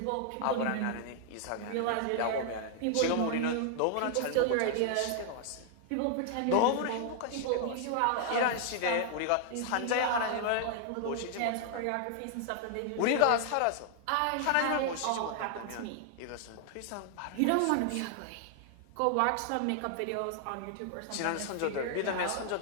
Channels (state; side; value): different; both; correlation 0.00